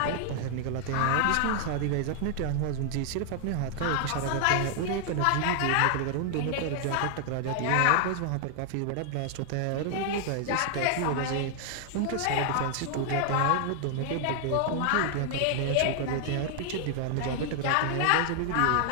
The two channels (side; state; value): both; different; correlation 0.00